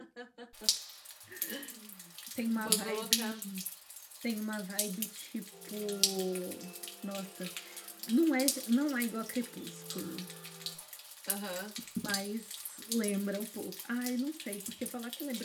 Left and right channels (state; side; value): identical; both; correlation 1.00